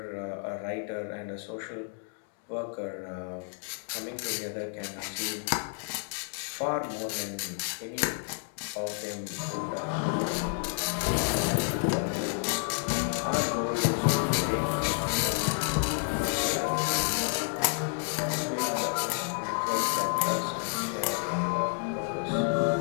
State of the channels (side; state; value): right; silent; 55 dB below the other